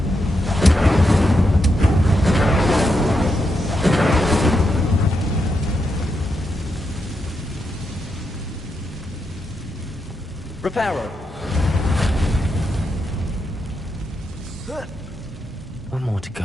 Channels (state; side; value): normal; both; correlation 0.84